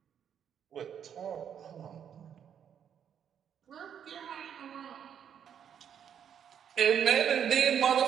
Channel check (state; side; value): quieter; left; 8.6 dB